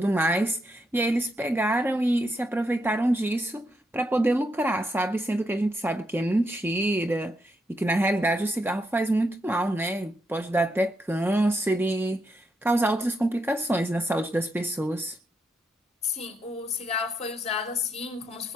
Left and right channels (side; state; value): both; normal; correlation 0.81